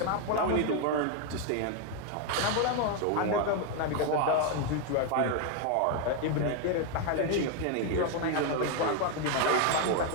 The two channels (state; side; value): different; both; correlation 0.01